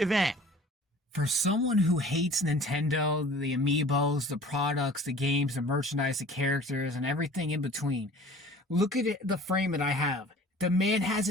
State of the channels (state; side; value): normal; both; correlation 0.46